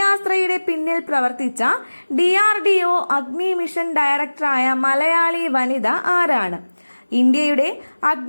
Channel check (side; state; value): both; inverted; correlation -1.00